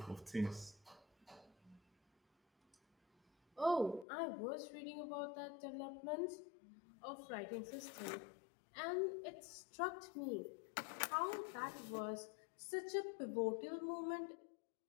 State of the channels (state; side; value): drops out; right; at 4.0 s